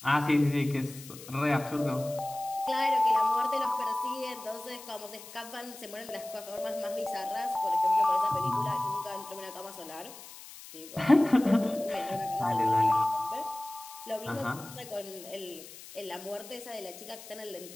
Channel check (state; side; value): noise; left; hiss, 16 dB below the sound